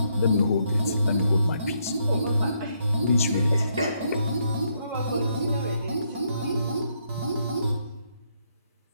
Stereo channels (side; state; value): both; inverted; correlation -0.75